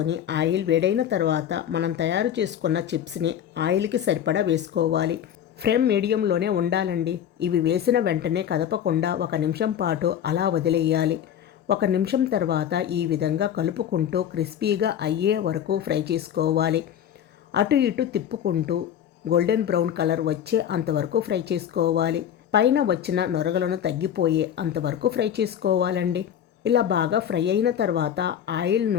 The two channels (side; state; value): right; quieter; 9.6 dB